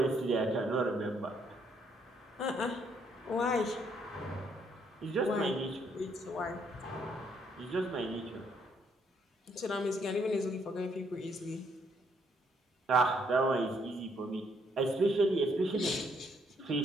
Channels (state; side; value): normal; both; correlation 0.70